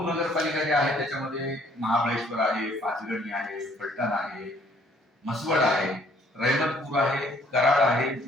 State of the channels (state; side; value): normal; both; correlation 0.62